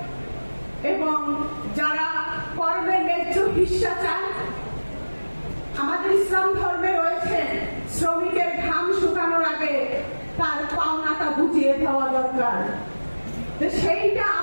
এবং যারা কর্মের ন্যায্য হিস্সা চান, আমাদের ইসলাম ধর্মে রয়েছে শ্রমিকের ঘাম শুকানোর আগে তার পাওনাটা বুঝিয়ে দেওয়া দরকার। সেইটা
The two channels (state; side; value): inverted; both; correlation -1.00